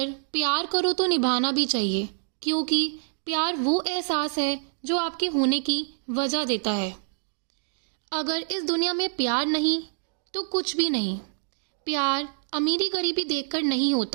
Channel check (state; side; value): silent; left; digital silence